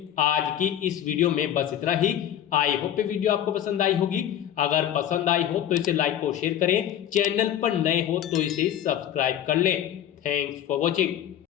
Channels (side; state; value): right; quieter; 10.7 dB